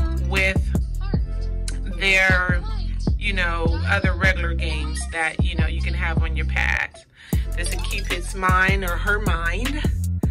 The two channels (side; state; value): both; identical; correlation 1.00